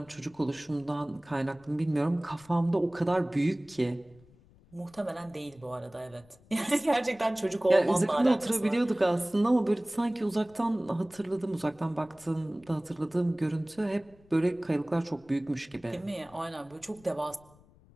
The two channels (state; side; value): noise; left; rumble, 27 dB below the sound